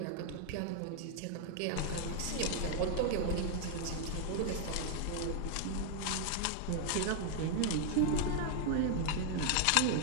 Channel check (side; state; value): both; different; correlation 0.00